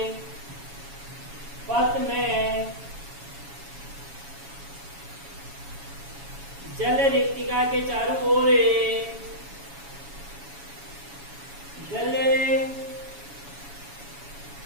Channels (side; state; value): left; late; 7.2 ms